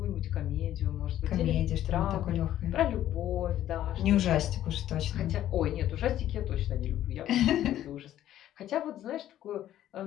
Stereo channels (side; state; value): right; quieter; 12.3 dB